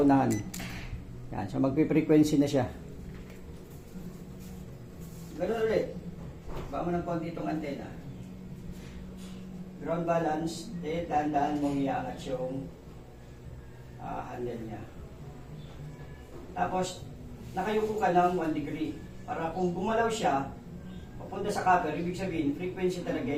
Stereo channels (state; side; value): identical; both; correlation 1.00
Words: Yan, so magpi-frequency na siya. Ganun ulit. Baka mo ng konti itong antena. Ground balance, dahan-dahan mong iaangat yung handle niya. Tapos, nakayuko ka ng 1 degree. Para kung gumalaw siya, papunta sa copper, ibig sabihin, frequency talaga